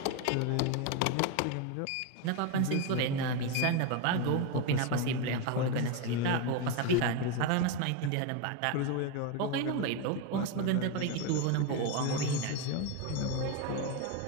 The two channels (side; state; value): both; different; correlation 0.03